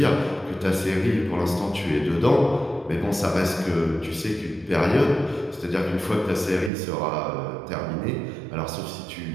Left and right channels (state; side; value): drops out; left; at 6.7 s